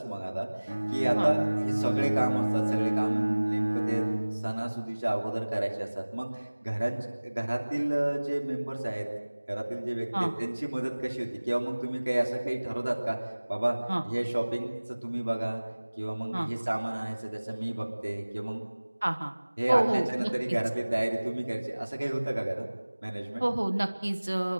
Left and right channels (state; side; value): inverted; both; correlation -1.00